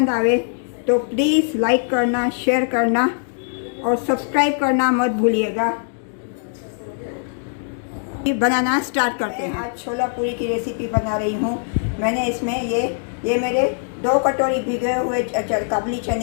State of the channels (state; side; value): silent; right; digital silence